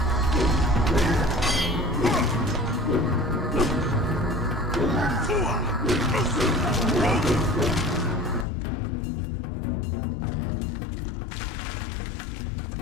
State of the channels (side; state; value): right; drops out; at 8.5 s